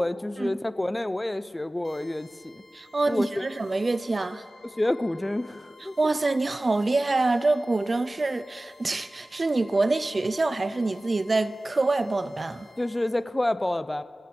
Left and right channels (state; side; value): normal; both; correlation 0.97